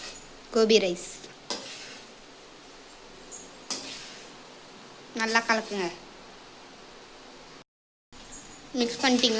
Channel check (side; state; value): both; identical; correlation 1.00